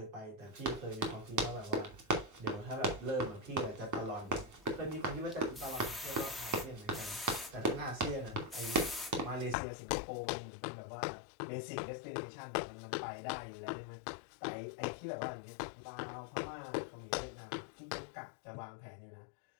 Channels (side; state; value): right; drops out; at 9.6 s